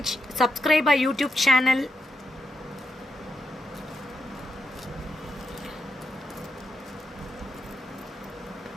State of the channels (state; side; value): normal; both; correlation 0.83